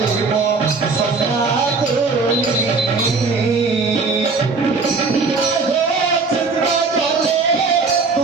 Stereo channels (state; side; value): quieter; left; 4.2 dB